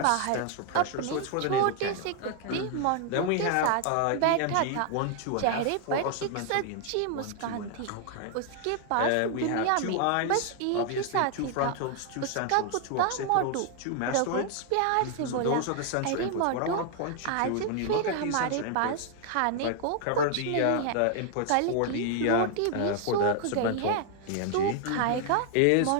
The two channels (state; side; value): different; both; correlation 0.00